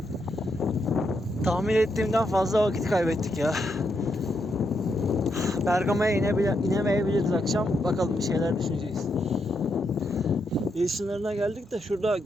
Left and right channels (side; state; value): both; normal; correlation 0.81